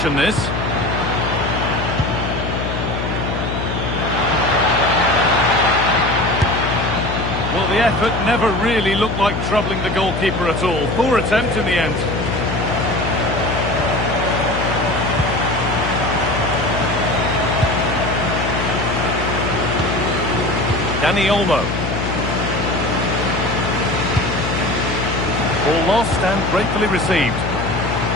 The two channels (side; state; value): left; noise; hum, 3 dB below the sound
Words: this. Well, the effort never really looked like troubling the goalkeeper at all. Poor attempt in the end. Dani Olmo. Ball lost and gratefully received.